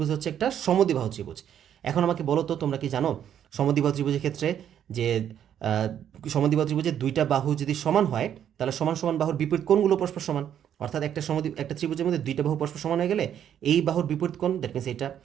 হচ্ছে একটা সমদ্বিবাহু ত্রিভুজ। এখন আমাকে বলো তো, তোমরা কি জানো সমদ্বিবাহু ত্রিভুজের ক্ষেত্রে যে সমদ্বিবাহু ত্রিভুজের দুইটা বাহু যদি সমান হয়, তাহলে সমান সমান বাহুর বিপরীত কোণগুলো পরস্পর সমান। অর্থাৎ একটা ত্রিভুজের মধ্যে দুইটা বাহু পরস্পর সমান হয়ে গেলে এই বাহুর বিপরীত কোণ দ্যাট মিনস এটা,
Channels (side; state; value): left; quieter; 9.7 dB